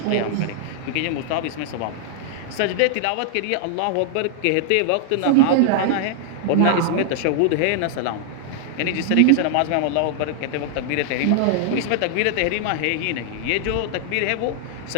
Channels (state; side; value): different; both; correlation -0.01